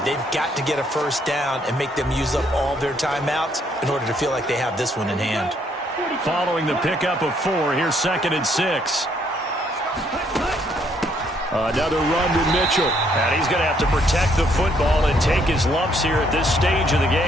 They've got to get a first down and make them use up all their timeouts in order to feel like they have this one in hand. Following the pickup of 4, here's 2nd and 6. Another run to Mitchell. And he's going to have to protect the football and take his lumps here at this stage of the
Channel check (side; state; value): both; normal; correlation 0.69